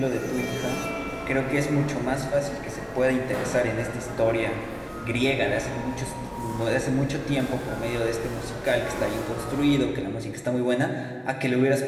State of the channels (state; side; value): identical; both; correlation 1.00